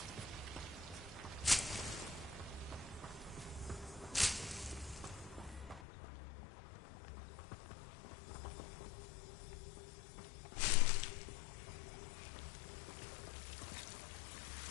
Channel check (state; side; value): drops out; right; at 5.9 s